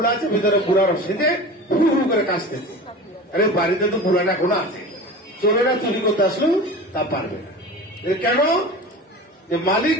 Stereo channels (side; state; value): both; normal; correlation 0.34